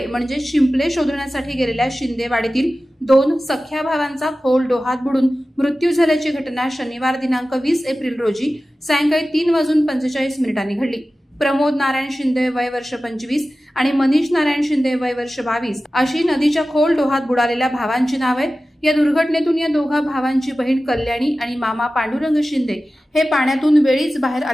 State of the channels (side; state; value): both; normal; correlation 0.95